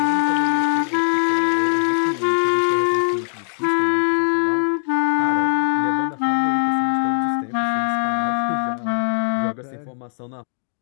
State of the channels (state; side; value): silent; right; 65 dB below the other